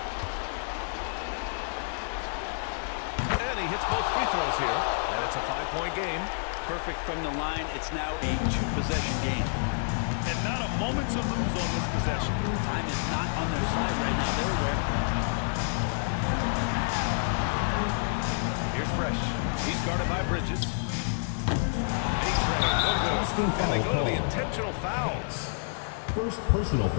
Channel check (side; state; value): right; silent; digital silence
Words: And he hits both free throws here, and it's a 5-point game. Perfect from the line. It's now a 2-possession game. And not a moment to lose on this possession. Time is not on their side right now. They're aware. Here's Fresh. He's guarded by Bridges. And they go to the intentional foul. First personal